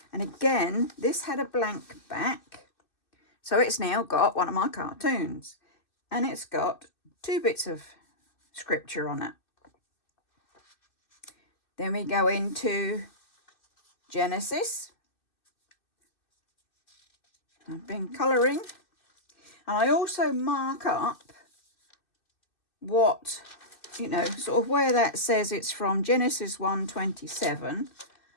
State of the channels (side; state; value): right; late; 2.6 ms